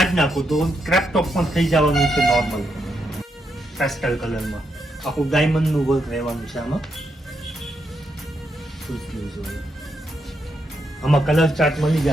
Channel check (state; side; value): normal; both; correlation 0.81